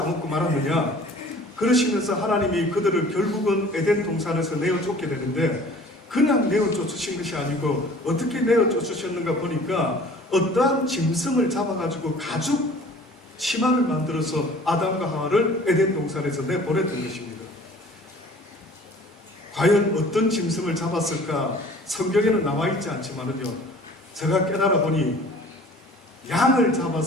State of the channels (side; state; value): both; normal; correlation 0.48